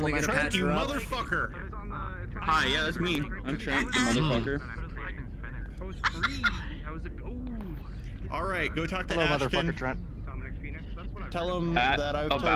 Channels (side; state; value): both; identical; correlation 1.00